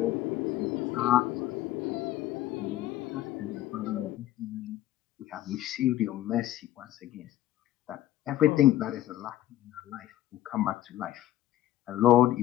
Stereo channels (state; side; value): quieter; right; 13.8 dB